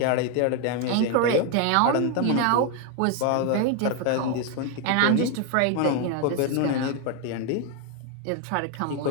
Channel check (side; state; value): both; different; correlation 0.01